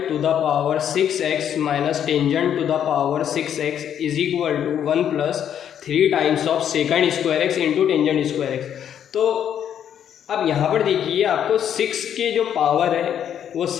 to the power 6x minus tangent to the power 6x is equal to 1 plus 3 times of secant square x into tangent square x. तो अब यहाँ पर देखिए, आपको 6 के जो पावर है वो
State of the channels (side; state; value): right; quieter; 9.4 dB